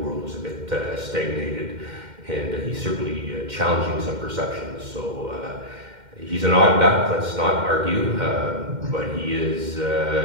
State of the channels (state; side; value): late; left; 2.1 ms